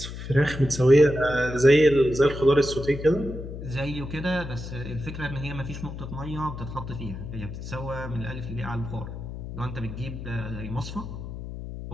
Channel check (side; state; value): left; noise; hum, 9 dB below the sound